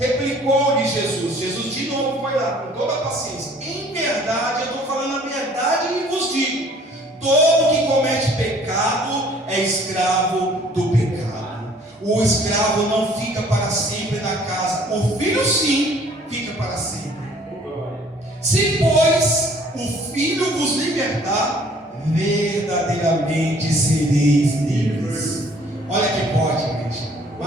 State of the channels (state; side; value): normal; both; correlation 0.56